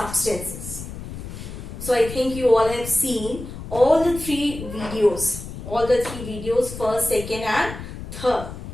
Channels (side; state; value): left; noise; rumble, 10 dB below the sound